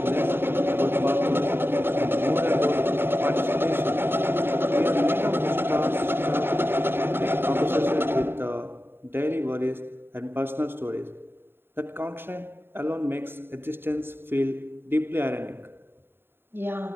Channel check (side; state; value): left; late; 0.11 ms